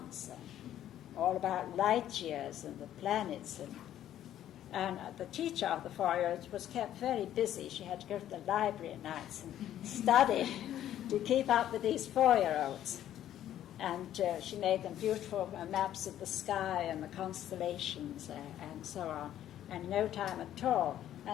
all about light years and the planets. And the teacher of the 4-year-olds was kept very busy. She had to go to the library at nights and study to keep up with these 4-year-olds. And she made them beautiful maps of the sky and the constellations and so on, and no time at all.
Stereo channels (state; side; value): quieter; right; 11.7 dB